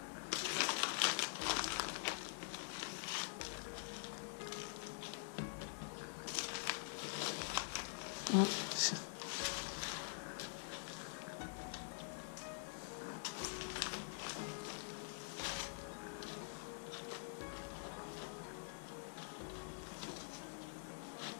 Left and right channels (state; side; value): silent; right; digital silence